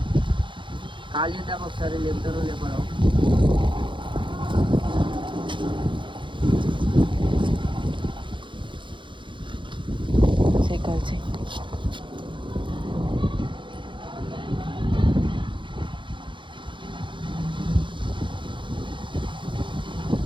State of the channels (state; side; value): late; left; 0.23 ms